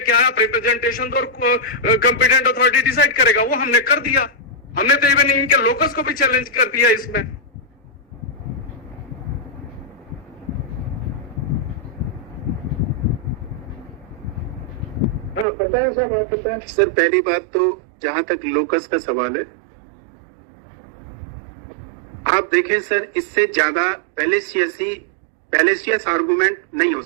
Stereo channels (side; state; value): left; drops out; at 15.5 s